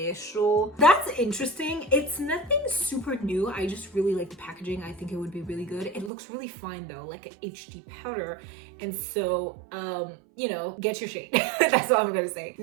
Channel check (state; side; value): drops out; left; at 6.1 s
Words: That's interesting. It's nothing super new. I just really like the packaging. I think it would be really good. It looks really fine though, like an HD powder. And so, you know, get your shade. That's all I'm gonna say.